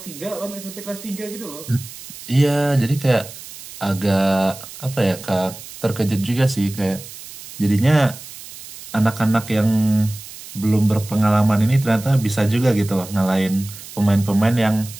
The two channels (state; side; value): noise; right; hiss, 15 dB below the sound